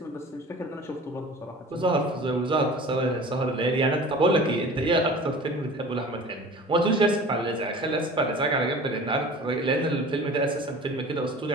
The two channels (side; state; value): both; normal; correlation 0.41